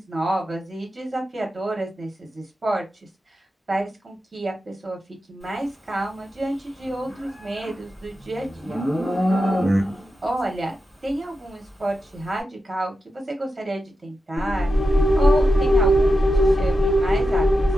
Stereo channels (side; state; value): both; normal; correlation 0.89